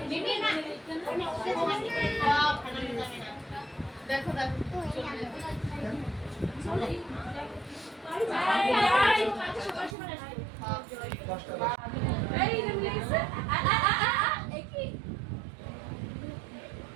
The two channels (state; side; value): drops out; left; at 10.0 s